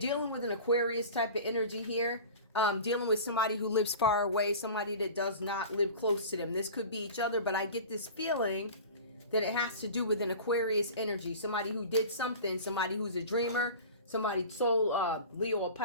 with an Aquarius type of energy here. Dealing with somebody who lives far away, somebody that does not live close to them. This could be each other, but I get this feeling that it has to do with an Aquarius energy. Somebody who did something, somebody who's a dreamer, somebody sold Leo a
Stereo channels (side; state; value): both; inverted; correlation -0.37